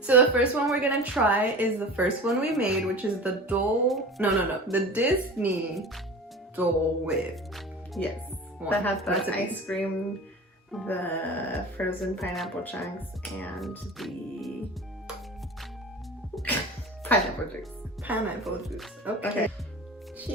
So the first one we're gonna try is the first one we made, which is the the Disney Dole Whip. Yes, that has the ice cream, the frozen pineapple chunks, and the pineapple juice. Pineapple juice. Okay.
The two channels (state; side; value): normal; both; correlation 0.36